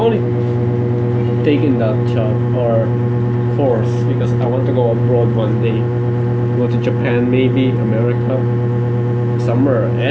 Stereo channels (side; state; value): both; identical; correlation 1.00